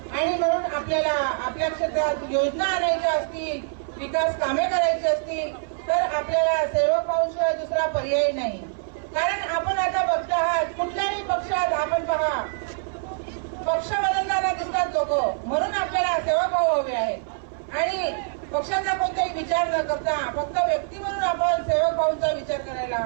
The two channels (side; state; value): left; silent; 60 dB below the other